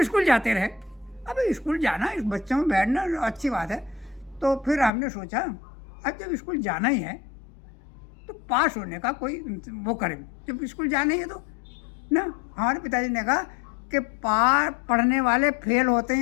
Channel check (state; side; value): drops out; right; at 4.9 s